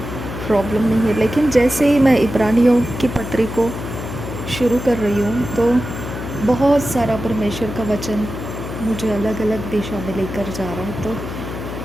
प्रॉब्लम नहीं है। लेकिन जैसे ही मैं इब्रानियों की पत्री को शुरू कर रही हूँ तो बहुत सारा परमेश्वर का वचन मुझे अलग अलग दिशा में लेकर जा रहा है। तो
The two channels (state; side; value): noise; left; hum, 8 dB below the sound